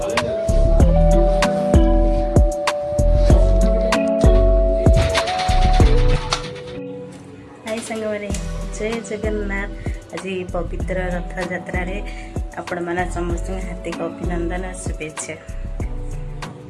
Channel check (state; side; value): identical; both; correlation 1.00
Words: जय जगन्नाथ आज पवित्र रथ यात्रा रे आपण माना समस्त हार्दिक अभिनंदन शुभेच्छा।